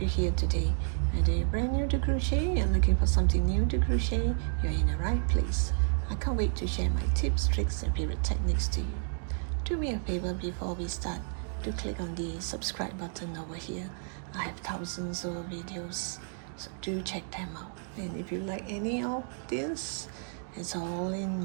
you here today. Whether you're brand new to crochet and looking for something new to crochet, you're in the right place. I can't wait to share my tips, tricks and favorite techniques to you. Do me a favor before we start, do click on the subscribe button over here. I have thousands of videos, so do check them out. And if you like any of this, it's all in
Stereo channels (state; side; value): silent; left; 56 dB below the other